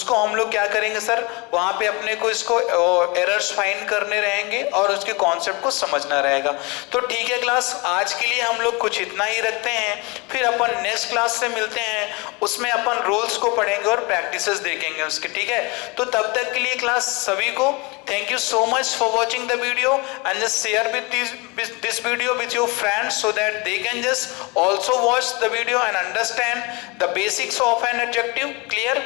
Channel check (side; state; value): right; quieter; 27.5 dB